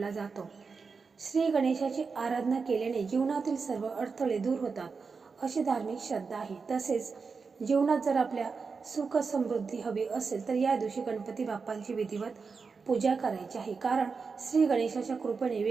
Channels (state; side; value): quieter; left; 4.9 dB